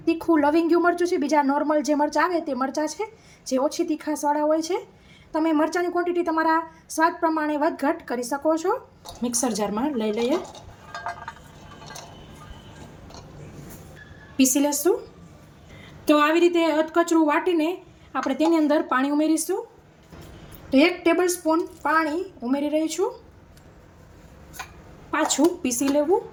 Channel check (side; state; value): both; identical; correlation 1.00